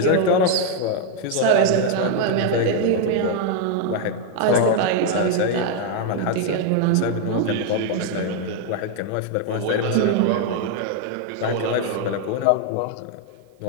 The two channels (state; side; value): different; both; correlation 0.01